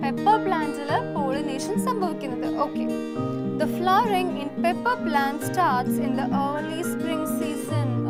പെപ്പർ പ്ലാന്റില് പോളിനേഷൻ സംഭവിക്കുന്നത്. Okay, the flowering in pepper plant starts in the early spring season.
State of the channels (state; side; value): identical; both; correlation 1.00